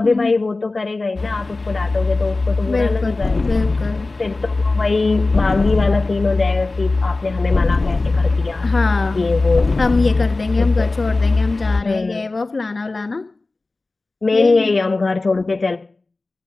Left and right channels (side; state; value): right; quieter; 3.3 dB